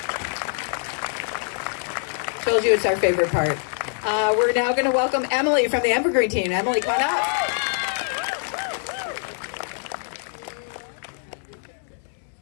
Told you it's our favorite part. We're now going to welcome Emily from the Evergreen team. Emily, come on up.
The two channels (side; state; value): right; silent; 59 dB below the other